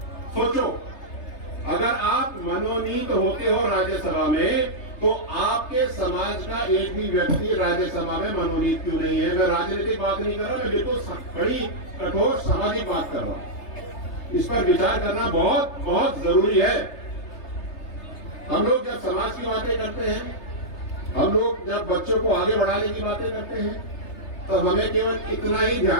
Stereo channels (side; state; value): right; late; 3.3 ms